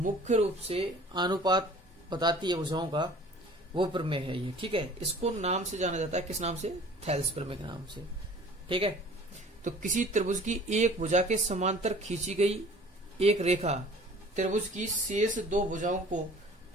रूप से अनुपात बताती है भुजाओं का, वो प्रमेय है ये। ठीक है, इसको नाम से जाना जाता है, किस नाम से? थेल्स प्रमेय के नाम से। ठीक है, तो किसी त्रिभुज की एक भुजा के समांतर खींची गई एक रेखा त्रिभुज की शेष दो भुजाओं को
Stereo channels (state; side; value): normal; both; correlation 0.48